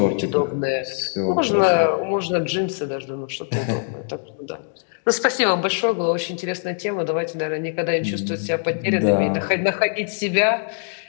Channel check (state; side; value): silent; right; 63 dB below the other